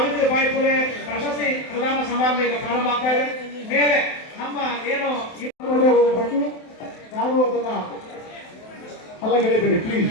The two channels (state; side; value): late; right; 27 ms